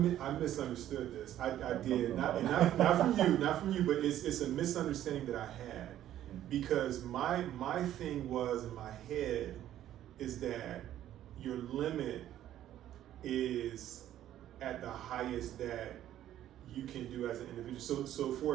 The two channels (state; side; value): quieter; left; 12.2 dB